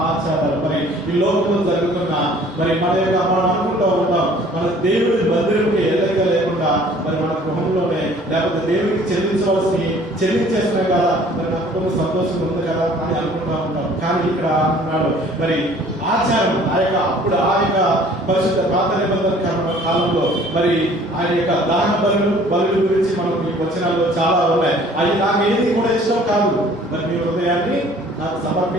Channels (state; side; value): normal; both; correlation 0.53